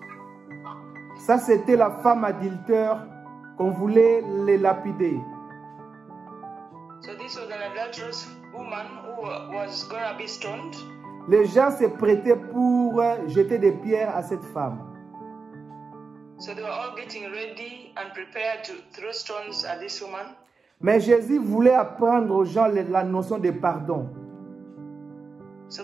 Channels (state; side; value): quieter; left; 4.6 dB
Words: Ça, c'était la femme adultère qu'on voulait les lapider. So this was an adulterous woman who was gonna be stoned. Les gens se prêtaient pour jeter des pierres à cette femme. So they were all getting ready and prepared to throw stones at this woman. Mais Jésus voulait apprendre aux gens la notion de pardon. So